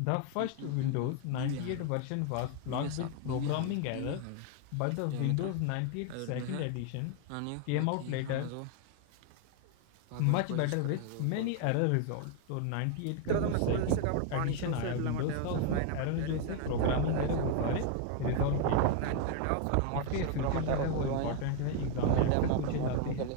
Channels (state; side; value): different; both; correlation 0.00